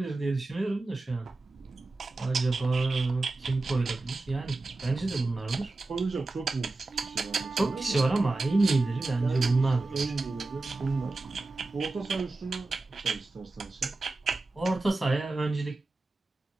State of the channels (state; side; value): quieter; left; 3.2 dB